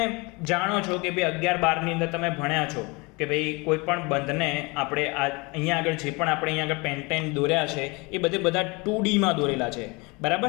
જાણો છો કે ભાઈ 11-12ની અંદર તમે ભણ્યા છો કે ભાઈ કોઈ પણ બંધને આપણે અહીંયા આગળ જે પણ આપણે અહીંયા આગળ પેન્ટેન દોર્યા છે એ બધા 2Dમાં દોરેલા છે, બરાબર.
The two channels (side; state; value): right; quieter; 26.9 dB